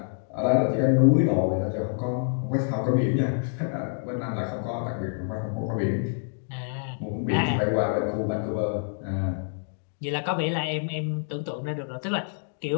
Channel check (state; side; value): silent; right; digital silence